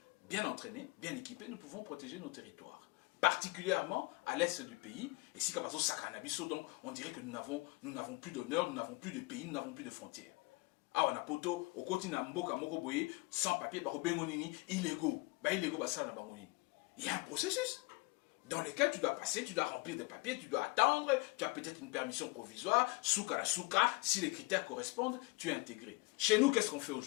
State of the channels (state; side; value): quieter; right; 25.5 dB